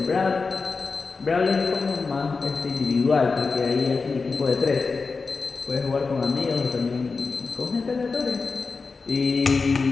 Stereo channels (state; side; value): quieter; right; 4.4 dB